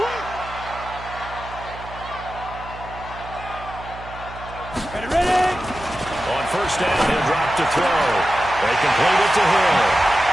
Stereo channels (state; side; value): noise; right; hum, 15 dB below the sound